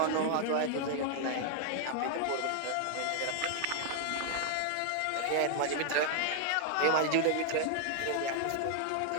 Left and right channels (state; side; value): different; both; correlation 0.00